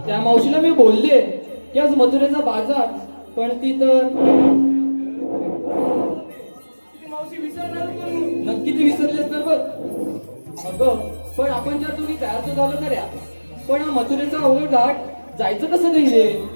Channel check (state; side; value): inverted; both; correlation -1.00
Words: मावशीला मी बोलले की आज मथुरेचा बाजार, पण ती तर मावशी विसरणार पण नक्की ती विसरली असणार बघ. अगं पण आपण जर तुम्ही तयार तर झालं खऱ्या, पण हा मथुरेचा अवघड घाट जायचं कसं नाही रे?